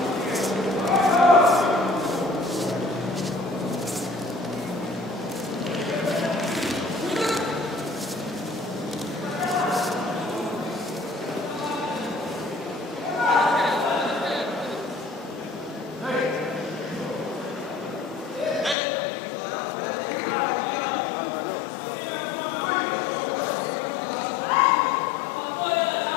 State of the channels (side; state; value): right; drops out; at 18.8 s